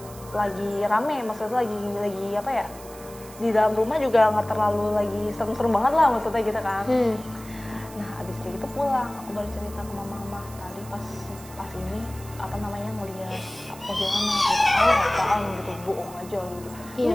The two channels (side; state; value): right; noise; hiss, 18 dB below the sound